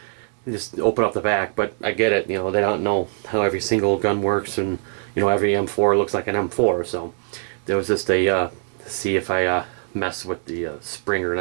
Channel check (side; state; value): left; silent; digital silence